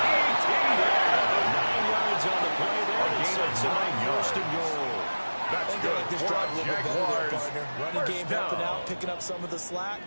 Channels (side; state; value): both; inverted; correlation -1.00